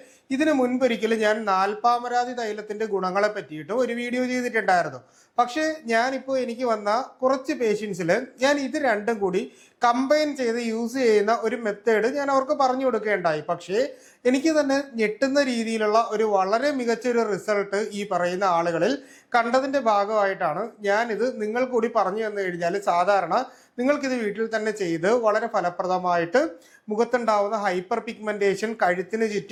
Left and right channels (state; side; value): identical; both; correlation 1.00